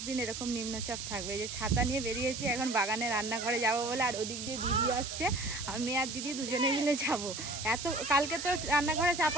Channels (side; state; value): right; noise; hiss, 7 dB below the sound